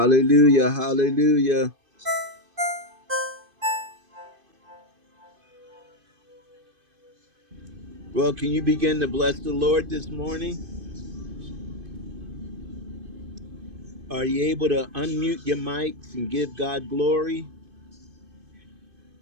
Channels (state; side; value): late; left; 2.5 ms